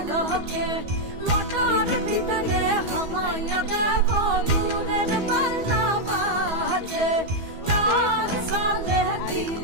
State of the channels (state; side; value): late; left; 12 ms